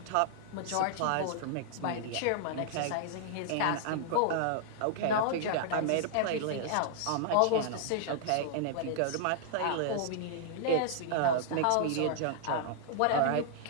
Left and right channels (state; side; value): different; both; correlation -0.01